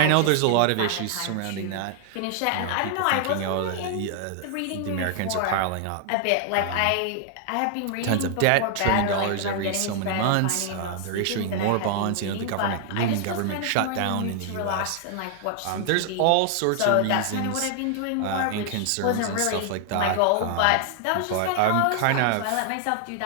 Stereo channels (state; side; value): different; both; correlation 0.00